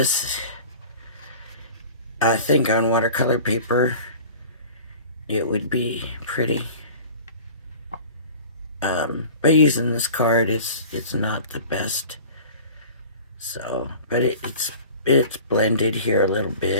I think on watercolor paper it would be pretty. But using this card, it's not the best. So, but it's blended here a little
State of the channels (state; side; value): inverted; both; correlation -0.42